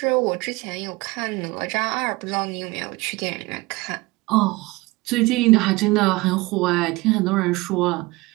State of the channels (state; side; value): quieter; left; 22.6 dB